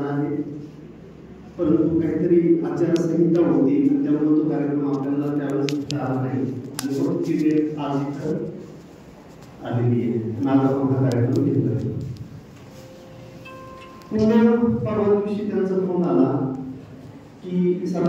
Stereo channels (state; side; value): identical; both; correlation 1.00